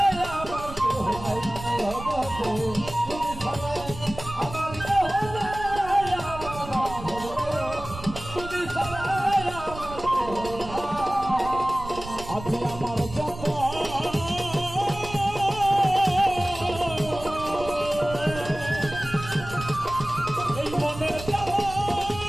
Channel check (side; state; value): right; noise; rumble, 13 dB below the sound